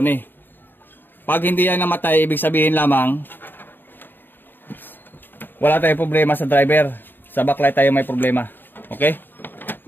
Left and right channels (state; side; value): late; right; 0.094 ms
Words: Pag hindi yan namatay, ibig sabihin lamang, wala tayong problema sa driver. Sa backlight tayo may problema. Okay?